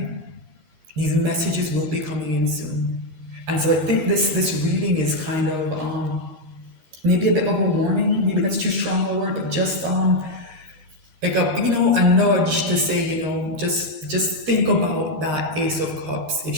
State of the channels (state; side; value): late; left; 12 ms